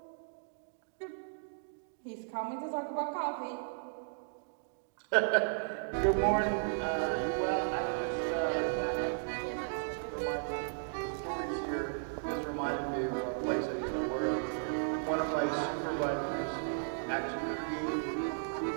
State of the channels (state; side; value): silent; left; digital silence